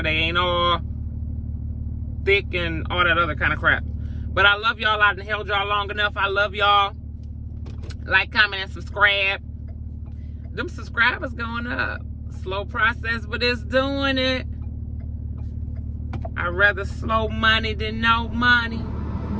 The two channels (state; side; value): identical; both; correlation 1.00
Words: They ain't all thick and all that other kind of crap. But I love y'all. I've held y'all long enough. I love y'all. Like, comment, and subscribe. Them subscribers going up. Slow process, but it's doing it. I'd rather slow money than no money.